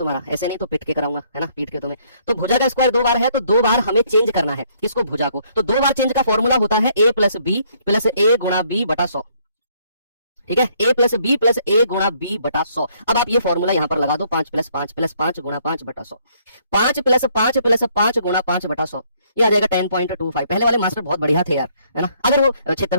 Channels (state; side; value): inverted; both; correlation -0.66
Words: ऐसे नहीं तो पीट के कराऊंगा, है ना, पीट के तुम्हें। तो भुजा का स्क्वायर 2 बार है तो 2 बार हमें चेंज करना है। किसको? भुजा को। तो 2 बार चेंज का फॉर्मूला होता है a प्लस बी प्लस ए गुणा बी बटा 100। ठीक है, a प्लस बी प्लस ए गुणा बी बटा 100। अब आप ये फॉर्मूला यहां पर लगा दो, 5 प्लस 5 प्लस 5 गुणा 5 बटा 100। 5 प्लस 5 प्लस 5 गुणा 5 बटा 100, ये आ जाएगा 10.25। पहले वाले मास्टर बहुत बढ़िया थे यार, है ना। अगर वो